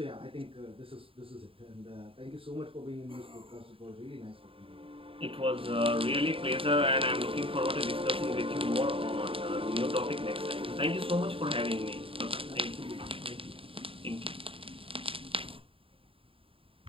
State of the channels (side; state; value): left; late; 0.27 ms